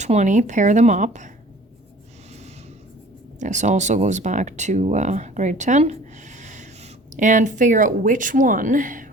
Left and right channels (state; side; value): normal; both; correlation 0.48